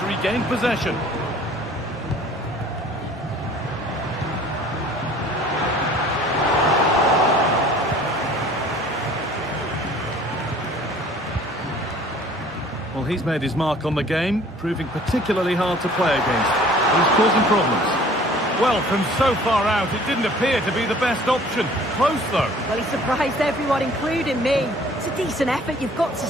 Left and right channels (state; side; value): normal; both; correlation 0.51